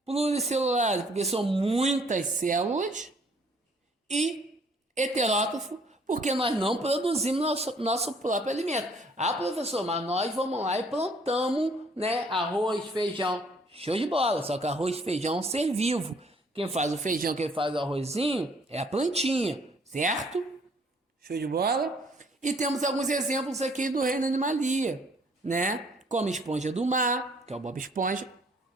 Pluricelulares porque são muitas células e heterótrofo porque nós não produzimos nosso próprio alimento. Ah, professor, mas nós vamos lá e plantamos, né, arroz, feijão. Show de bola, só que arroz e feijão é um ser vivo. Quem faz o feijão, quem faz o arrozinho é a plantinha, certo? Show de bola? E temos alguns exemplos aqui do reino Animalia, né? Como esponja do mar, que é o Bob Esponja,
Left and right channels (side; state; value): both; normal; correlation 0.61